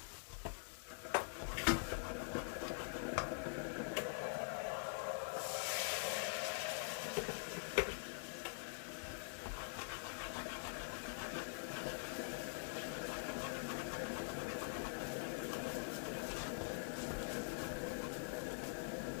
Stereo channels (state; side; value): silent; right; digital silence